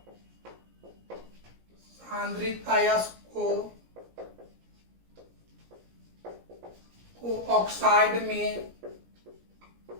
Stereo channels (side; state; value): left; late; 17 ms